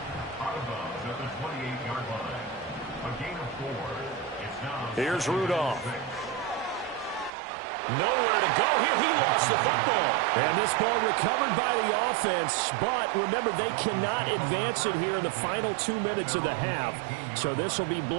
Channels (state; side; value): drops out; left; at 7.3 s